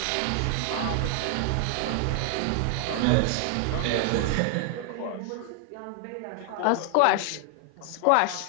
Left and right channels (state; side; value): different; both; correlation 0.00